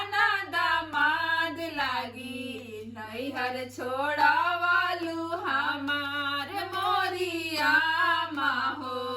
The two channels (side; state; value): both; identical; correlation 1.00